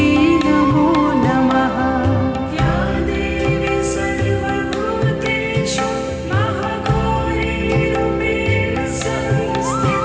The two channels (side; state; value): both; identical; correlation 1.00